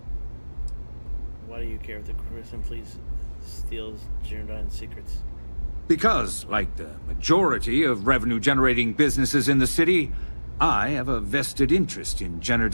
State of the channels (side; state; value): both; inverted; correlation -1.00